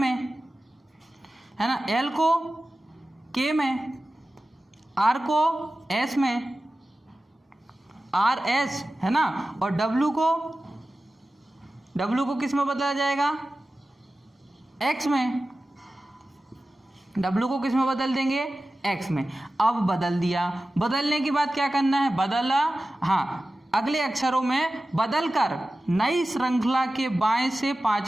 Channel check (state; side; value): normal; both; correlation 0.95